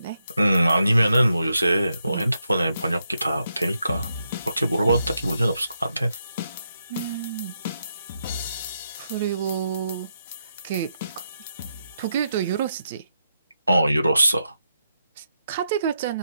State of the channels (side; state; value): both; inverted; correlation -0.82